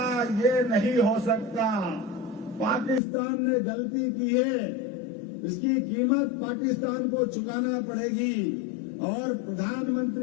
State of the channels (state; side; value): drops out; right; at 3.0 s